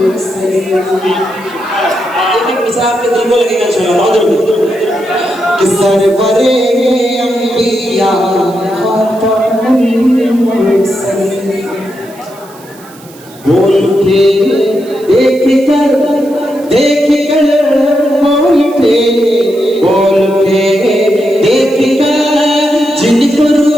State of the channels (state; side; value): noise; right; hiss, 23 dB below the sound